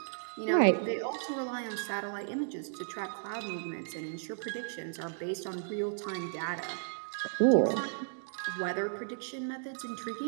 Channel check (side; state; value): left; silent; digital silence